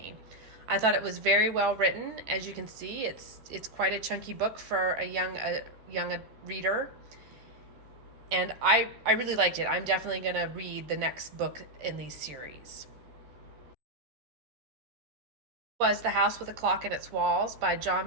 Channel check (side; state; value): left; late; 14 ms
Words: I thought it was very well written. As you can see, it's quite a chunky book for a young reader. And I really liked it. I'm definitely going to read the next book in these series. Was The House with a Clock in Its Walls by